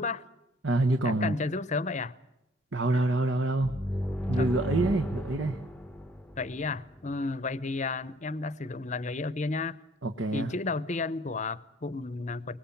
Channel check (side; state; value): both; normal; correlation 0.59